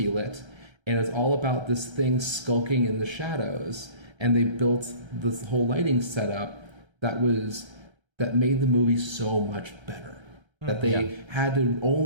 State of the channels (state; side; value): late; left; 1.3 ms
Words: And it's all about this thing skulking in the shadows. And they built this whole lighting setup that made the movie so much better. That they could